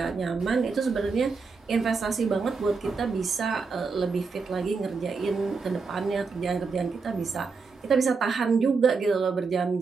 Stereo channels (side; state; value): left; quieter; 4.7 dB